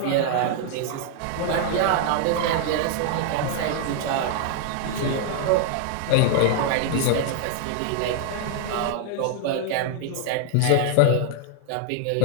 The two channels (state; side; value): different; both; correlation 0.00